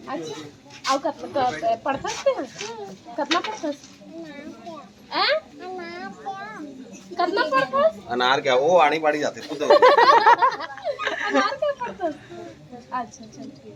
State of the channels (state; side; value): identical; both; correlation 1.00